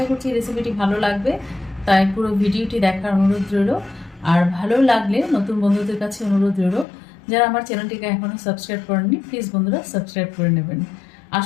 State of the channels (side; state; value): right; drops out; at 6.9 s